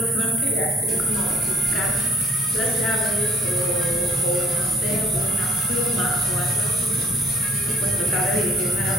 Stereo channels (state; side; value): normal; both; correlation 0.57